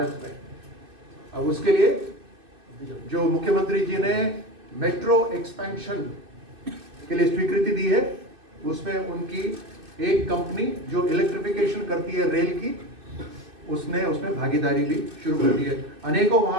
में। अब उसके लिए जो मुख्यमंत्री जी ने मेट्रो एक्सपेंशन के लिए स्वीकृति दी है, उसमें उनकी एक कंपनी जो इलेक्ट्रिफिकेशन करती है रेल की, उसमें भागीदारी भी शुरू कर दी है। अनेकों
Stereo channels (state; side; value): late; left; 2.6 ms